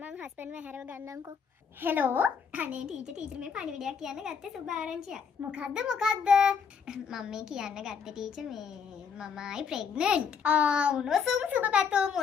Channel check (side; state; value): right; quieter; 6.4 dB